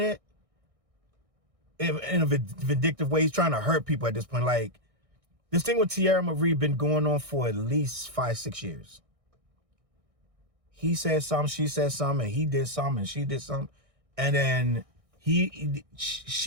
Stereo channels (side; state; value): left; late; 1.6 ms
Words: in a vindictive way. He's trying to hurt people at this point. Like, this thing with T.H.E been going on for at least 5-6 years. He said something, she said something, and he did something, and she did something. And then